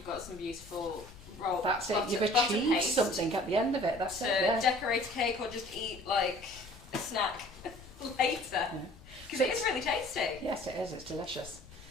got some beautiful roll. That's it, you've achieved something at the end of it. That's it. To decorate a cake or just eat like a snack later. Because it is really tasty. Yes, it is, it's delicious.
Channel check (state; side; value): noise; left; rumble, 21 dB below the sound